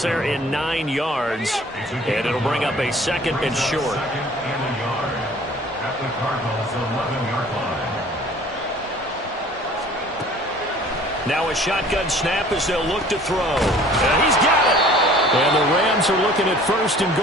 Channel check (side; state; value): both; normal; correlation 0.50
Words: there in 9 yards. And it'll bring up a second and short. Second and a yard at the Cardinals' 11-yard line. Now a shotgun snap as they'll look to throw. And he's got it. And the Rams are looking at first and